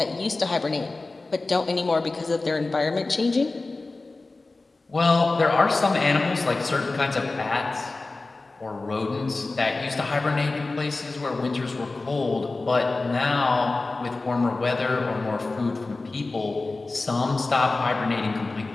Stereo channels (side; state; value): right; quieter; 3.4 dB